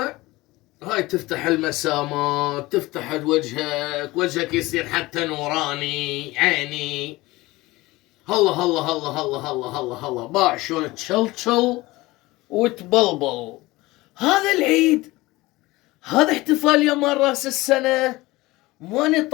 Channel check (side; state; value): right; quieter; 20.2 dB